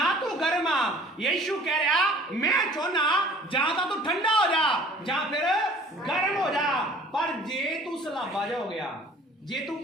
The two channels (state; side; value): normal; both; correlation 0.50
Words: ਤੂੰ ਗਰਮ ਆ। ਯਿਸੂ ਕਹਿ ਰਿਹਾ ਮੈਂ ਚਾਹੁੰਦਾ ਜਾਂ ਤਾਂ ਤੂੰ ਠੰਡਾ ਹੋ ਜਾ ਜਾਂ ਫਿਰ ਗਰਮ ਹੋ ਜਾ। ਪਰ ਜੇ ਤੂੰ ਸਲਾਬਾ ਜਾ ਹੋ ਗਿਆ, ਜੇ ਤੂੰ